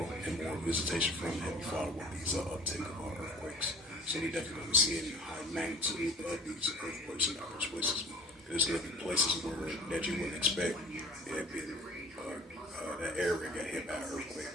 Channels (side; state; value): both; normal; correlation 0.47